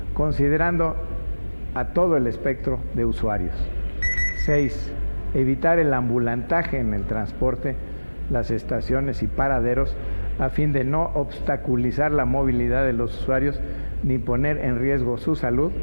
considerando a todo el espectro de usuarios. 6. Evitar el ambulantaje en el transporte, las estaciones y paraderos, a fin de no obstaculizar la movilidad de los usuarios ni poner en riesgo su salud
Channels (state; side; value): inverted; both; correlation -1.00